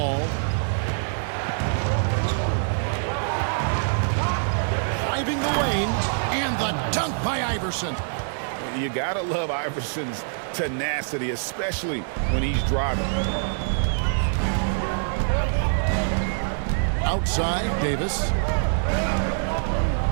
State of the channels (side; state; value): left; silent; digital silence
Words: Driving the lane, and the dunk by Iverson. You gotta love Iverson's tenacity, especially when he's driving. Outside, Davis.